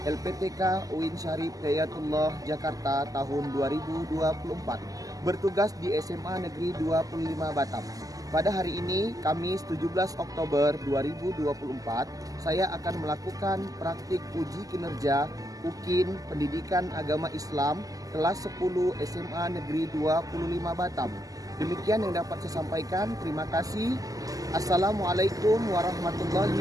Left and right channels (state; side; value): late; left; 0.17 ms